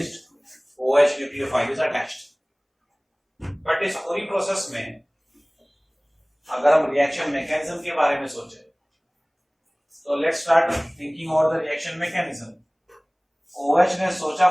OH nucleophile is attached। But इस पूरी प्रोसेस में अगर हम रिएक्शन मैकेनिज्म के बारे में सोचें तो let's start thinking over the reaction mechanism. OH ने सोचा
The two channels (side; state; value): both; identical; correlation 1.00